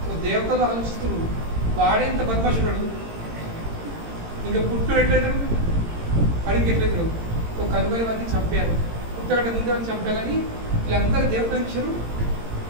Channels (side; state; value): left; late; 18 ms